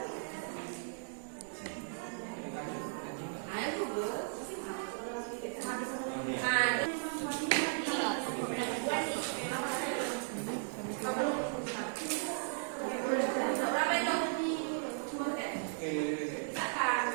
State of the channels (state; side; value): silent; left; digital silence